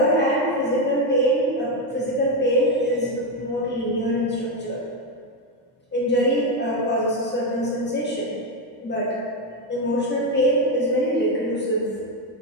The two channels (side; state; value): both; normal; correlation 0.07